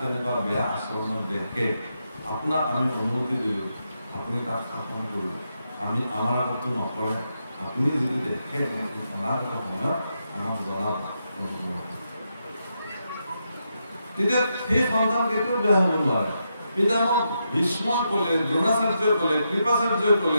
বেয়া আচৰণত দেখে, আপোনাক আমি অনুমতি দিলোঁ, আপুনি তাত শাসন কৰিব, আমি আমাৰ আগতো নকৰে, আপুনি যদি দেখে অনাগত সময়ত আমাক জনাব। তেতিয়া সেই সন্তান কেতিয়াও বেয়া হ'ব নোৱাৰে। পিতামহ ভীষ্মই ক'লে, দ্ৰোণাচাৰ্যই ক'লে, কৃপাচাৰ্যই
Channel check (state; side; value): inverted; both; correlation -0.83